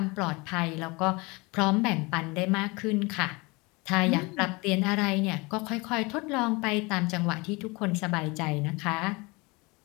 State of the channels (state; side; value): quieter; right; 25.9 dB